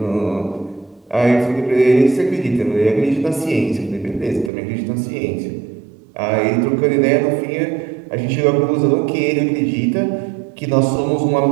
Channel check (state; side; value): drops out; left; at 4.5 s